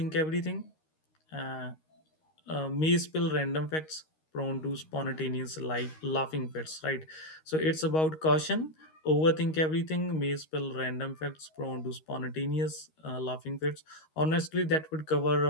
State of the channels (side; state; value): right; late; 13 ms